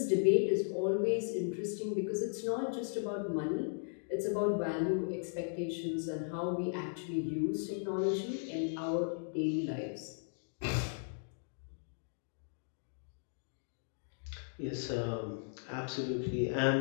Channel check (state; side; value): silent; right; digital silence